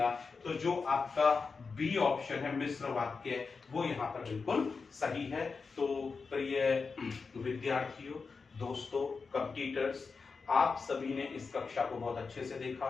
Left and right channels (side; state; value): right; quieter; 4.8 dB